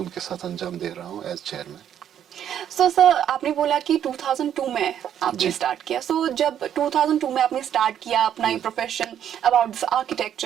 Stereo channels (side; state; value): left; quieter; 9.8 dB